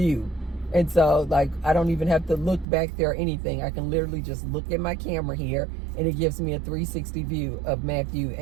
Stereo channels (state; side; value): drops out; left; at 2.7 s